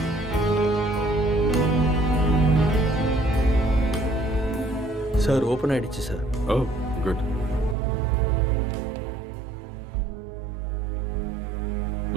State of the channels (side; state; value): left; drops out; at 7.8 s